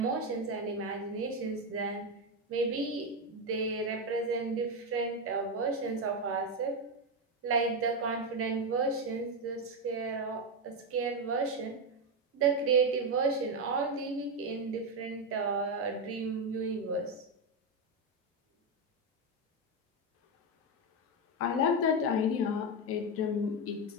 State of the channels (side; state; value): both; normal; correlation 0.08